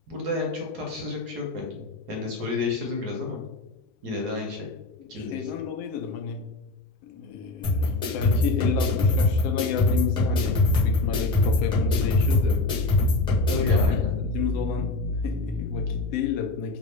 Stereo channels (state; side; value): quieter; right; 3.0 dB